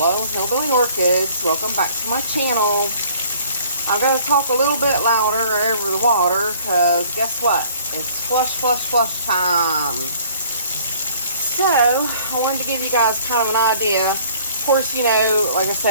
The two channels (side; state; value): both; inverted; correlation -0.55